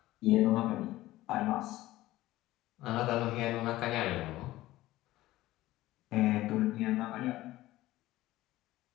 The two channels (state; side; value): quieter; right; 16.6 dB